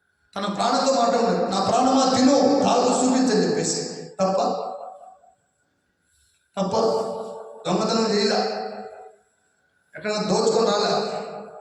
తన ప్రాణంతో మాట్లాడు. నా ప్రాణమా తిను, తాగు, చూపించని చెప్పేసి. తప్ప దొంగతనం చేయలే, ఎక్కడైనా దోచుకొని రాలే,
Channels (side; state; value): both; identical; correlation 1.00